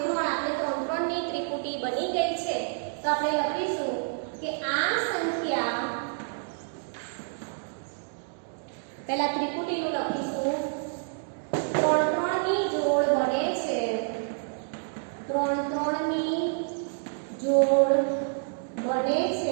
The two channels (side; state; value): left; silent; digital silence